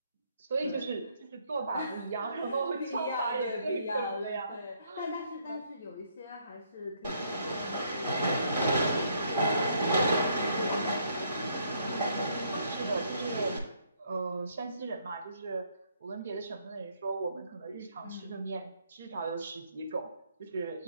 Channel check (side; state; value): both; inverted; correlation -0.69